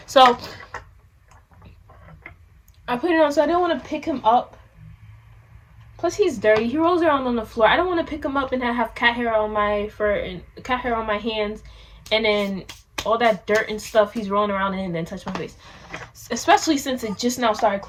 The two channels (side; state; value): both; identical; correlation 1.00